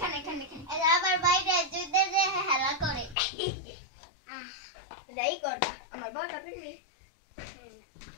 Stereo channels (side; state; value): right; drops out; at 3.2 s